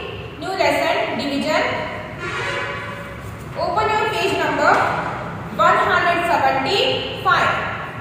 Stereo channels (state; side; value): identical; both; correlation 1.00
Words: new lesson division, open your page number 175.